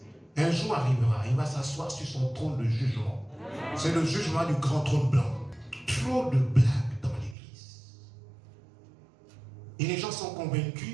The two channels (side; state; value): left; drops out; at 7.4 s